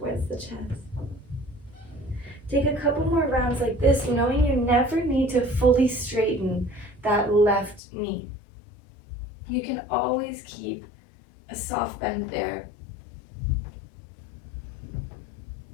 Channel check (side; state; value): right; drops out; at 7.8 s